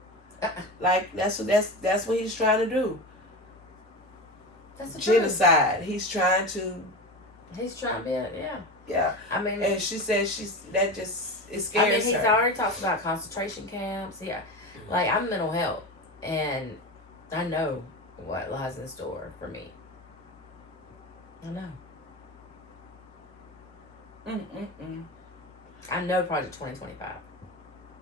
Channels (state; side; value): normal; both; correlation 0.25